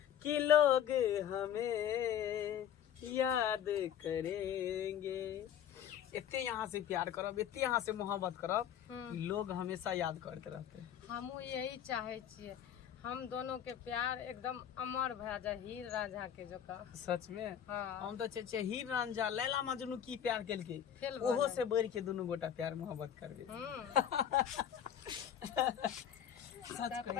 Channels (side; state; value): right; quieter; 9.4 dB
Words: कि लोग हमें याद करेंगे। इतने यहाँ से प्यार करब, इतने यहाँ से मोहब्बत करब, लोग हमेशा याद करते रहते। हमहू यही चाहे छिए, हम दोनों के प्यार एकदम अमर भए जाए, हीर रांझा के जका। सच में हाँ। हम तो चाहे हीर रांझा लैला मजनू की प्यार केलके, फेल ओहो भऽ से बढ़ के दोनों गोटा प्यार मोहब्बत करबे। सच